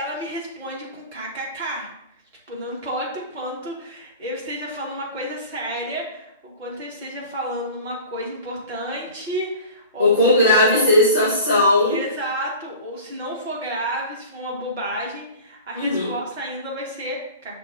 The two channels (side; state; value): both; inverted; correlation -0.38